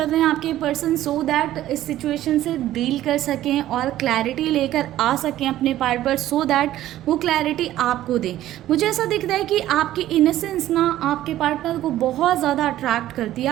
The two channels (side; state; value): left; quieter; 13.7 dB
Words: रहे हैं आपके पर्सन, सो दैट इस सिचुएशन से डील कर सकें और क्लैरिटी लेकर आ सकें अपने पार्ट पर, सो दैट वो क्लैरिटी आपको दें। मुझे ऐसा दिख रहा है कि आपकी इनोसेंस ना आपके पार्टनर को बहुत ज़्यादा अट्रैक्ट करती है।